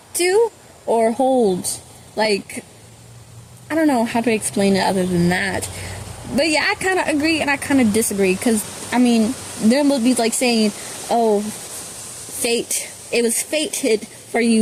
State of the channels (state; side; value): identical; both; correlation 1.00